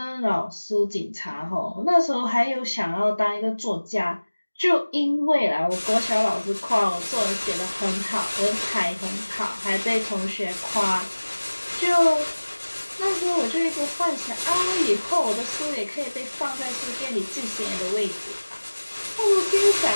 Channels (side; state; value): both; inverted; correlation -1.00